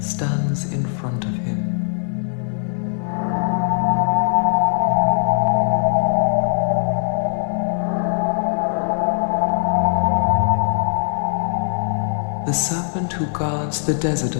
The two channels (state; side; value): silent; right; digital silence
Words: in front of him. The serpent who guards the desert